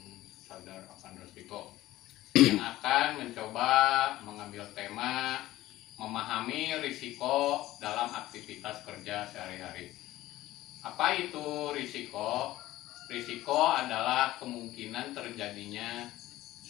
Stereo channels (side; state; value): right; quieter; 15.9 dB